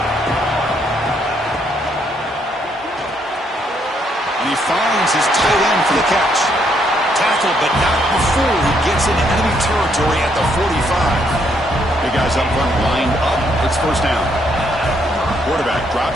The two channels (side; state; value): both; normal; correlation 0.72